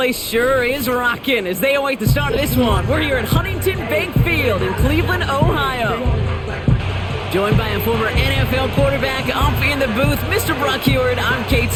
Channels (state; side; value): identical; both; correlation 1.00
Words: sure is rocking as they await the start of this one. We're here at Huntington Bank Field in Cleveland, Ohio. Joined by a former NFL quarterback up in the booth, Mr. Brock Heward. I'm Kate